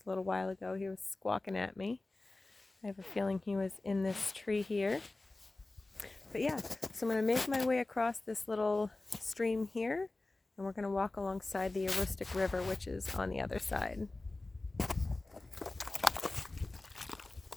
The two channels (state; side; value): quieter; right; 3.1 dB